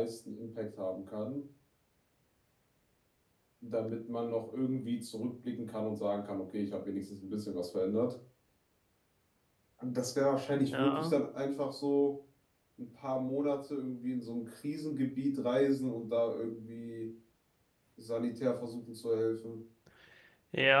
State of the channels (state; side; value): identical; both; correlation 1.00